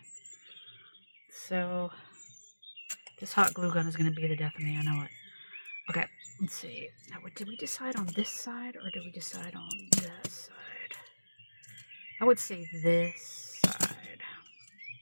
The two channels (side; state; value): both; inverted; correlation -1.00